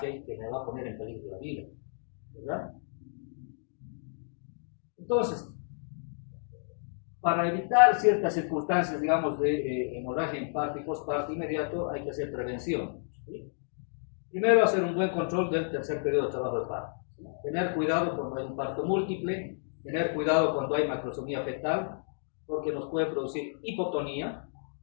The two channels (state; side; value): silent; right; digital silence